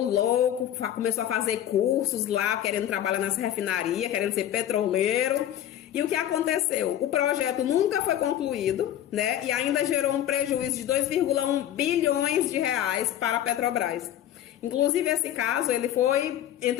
louco, começou a fazer cursos lá, querendo trabalhar nessa refinaria, querendo ser petroleiro. E o que aconteceu? O projeto nunca foi concluído, né? E ainda gerou um prejuízo de 2,1 bilhões de reais para a Petrobras. Inclusive, esse caso,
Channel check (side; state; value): right; quieter; 11.5 dB